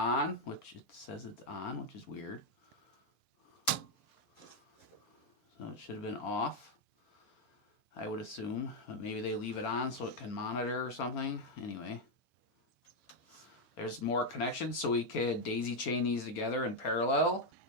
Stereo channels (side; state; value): right; late; 1.4 ms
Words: which it says it's on, which is weird. So it should have been off, I would assume, but maybe they leave it on so it can monitor or something. Anyway, there's more connections, so we could daisy chain these together in parallel.